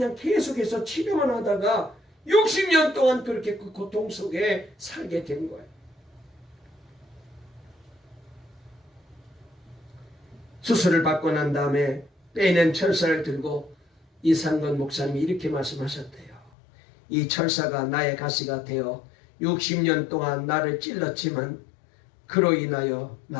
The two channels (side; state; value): right; drops out; at 16.5 s